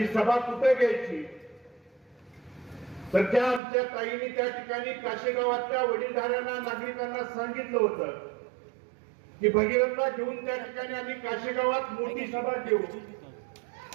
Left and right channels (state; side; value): drops out; left; at 3.6 s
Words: सभा कुठे घ्यायची तर त्या आमच्या ताईंनी त्या ठिकाणी काशेगावातल्या वडीलधाऱ्यांना, नागरिकांना सांगितलं होतं की भगीरथला घेऊन त्या ठिकाणी आम्ही काशेगावात मोठी सभा घेऊ